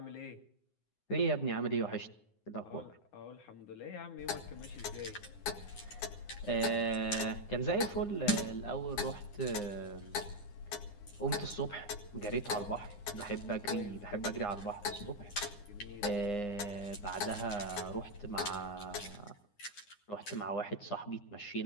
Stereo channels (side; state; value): right; late; 9.8 ms